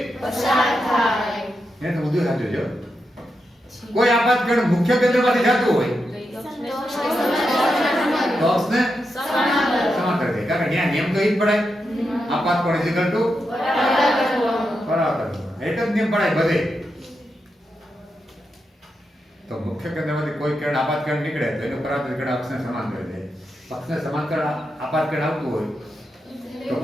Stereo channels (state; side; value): normal; both; correlation 0.86